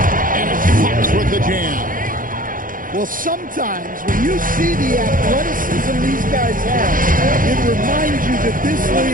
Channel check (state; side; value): late; left; 0.40 ms